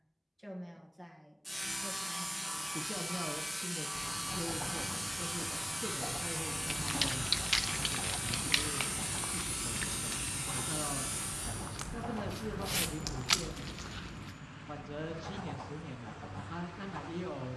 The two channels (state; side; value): identical; both; correlation 1.00